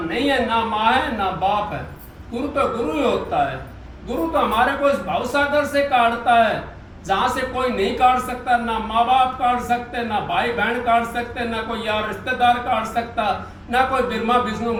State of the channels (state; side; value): identical; both; correlation 1.00